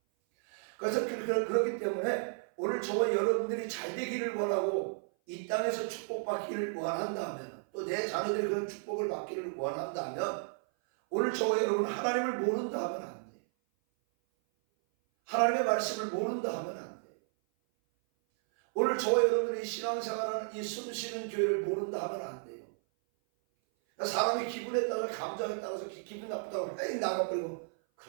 그래서 그렇기 때문에 오늘 저와 여러분들이 잘 되기를 원하고 이 땅에서 축복받기를 원한다면, 또 내 자녀들이 그런 축복을 받기를 원한다면, 오늘 저와 여러분 하나님을 모른다 하면 안 돼요. 하나님의 말씀을 모른다 하면 안 돼요. 오늘 저와 여러분들이 신앙생활하는 이 숨쉬는 교회를 모른다 하면 안 돼요. 사람이 기분에 따라서, 감정에 따라서 기분 나쁘다고 에이 나가버리고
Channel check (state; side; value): silent; left; 55 dB below the other